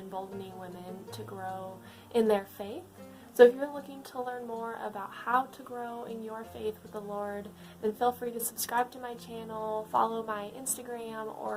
women to grow in their faith. So if you're looking to learn more about how to grow in your faith with the Lord, then feel free to subscribe to my channel, follow my Instagram,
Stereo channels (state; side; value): identical; both; correlation 1.00